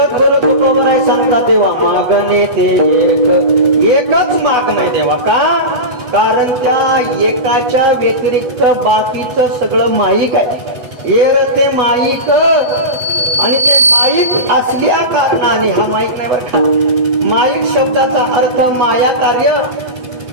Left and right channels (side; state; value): left; late; 8.1 ms